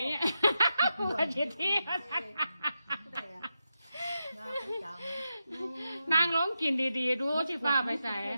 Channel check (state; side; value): inverted; both; correlation -0.88